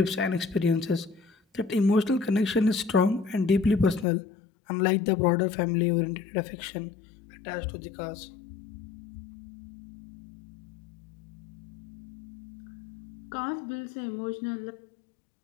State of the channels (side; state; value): right; drops out; at 4.0 s